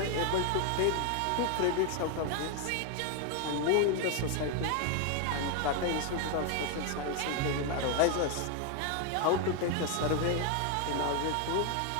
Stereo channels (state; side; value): different; both; correlation 0.01